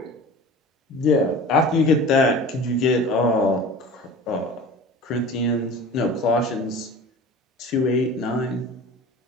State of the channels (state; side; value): normal; both; correlation 0.38